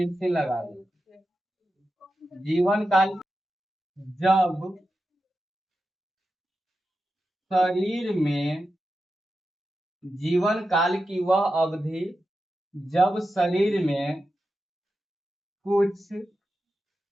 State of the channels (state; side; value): normal; both; correlation 0.91